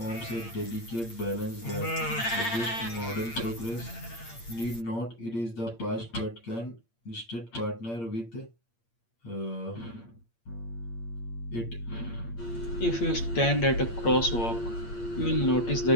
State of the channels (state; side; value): late; right; 8.7 ms